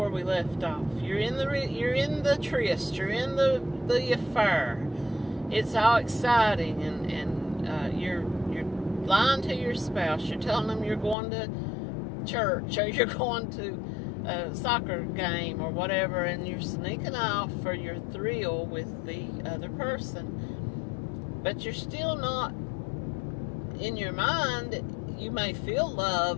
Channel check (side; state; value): right; drops out; at 11.2 s